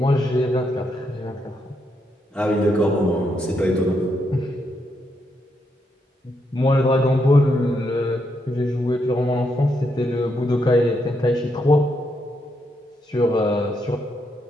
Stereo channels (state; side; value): normal; both; correlation 0.79